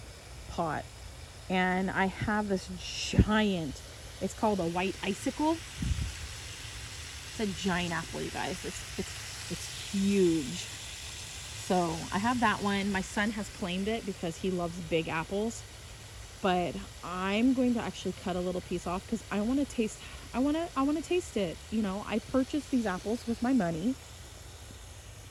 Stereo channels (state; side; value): identical; both; correlation 1.00